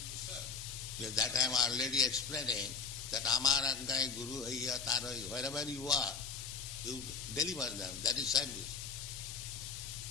serve. Yes, that I am already explaining, that Amar Aggai Guru Haiya Taro, wherever you are, you deliver them. That is service.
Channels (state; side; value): quieter; right; 5.5 dB